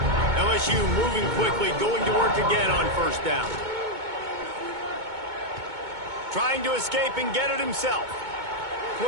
LSU moving quickly, going to work again on first down. Trying to escape and get it himself.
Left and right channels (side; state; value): left; late; 2.2 ms